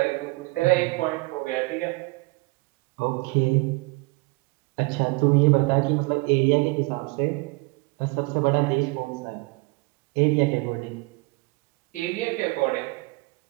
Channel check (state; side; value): quieter; left; 25.6 dB